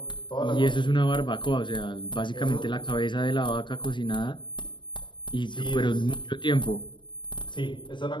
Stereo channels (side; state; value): right; late; 0.22 ms